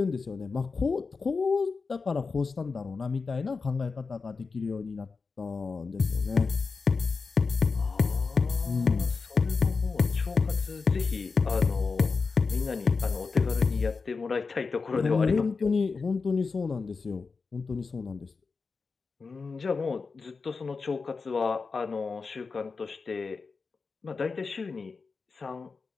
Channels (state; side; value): quieter; right; 4.6 dB